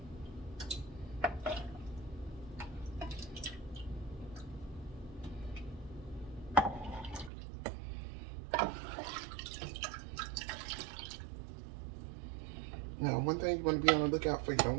Now, one thing you want to be on the lookout for, you don't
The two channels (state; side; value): drops out; left; at 7.3 s